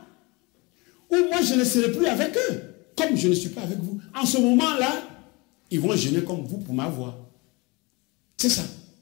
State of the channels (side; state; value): right; quieter; 26.3 dB